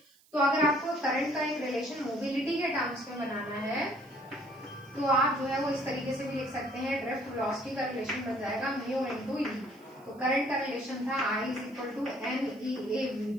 तो अगर आपको करंट का एक रिलेशन मोबिलिटी के टर्म्स में बनाना है तो आप जो है वो इस तरीके से भी लिख सकते हैं, ड्रिफ्ट वेलोसिटी का रिलेशन बन जाएगा म्यू इनटू ई। तो करंट का रिलेशन था I is equal to n e A v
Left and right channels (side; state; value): right; noise; hiss, 30 dB below the sound